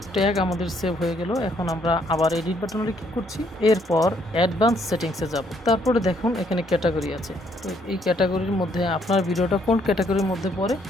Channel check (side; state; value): both; normal; correlation 0.69